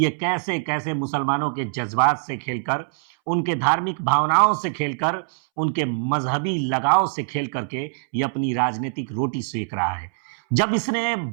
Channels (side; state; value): left; silent; 63 dB below the other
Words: कैसे कैसे मुसलमानों के जज्बात से खेलकर, उनके धार्मिक भावनाओं से खेलकर, उनके मजहबी लगाव से खेल करके ये अपनी राजनीतिक रोटी सेक रहा है। जब इसने